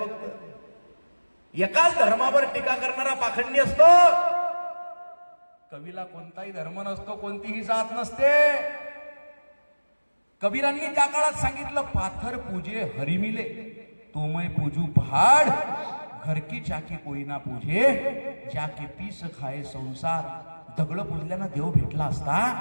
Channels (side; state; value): both; inverted; correlation -1.00